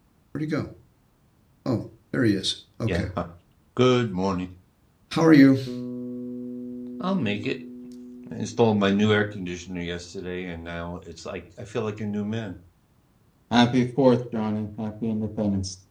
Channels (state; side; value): identical; both; correlation 1.00